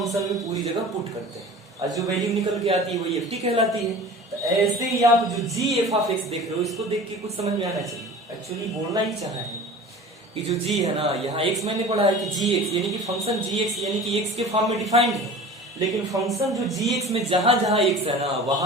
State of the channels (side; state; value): both; normal; correlation 0.39